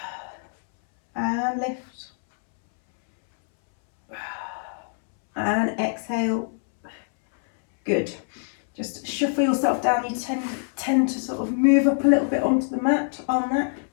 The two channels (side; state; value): right; silent; 62 dB below the other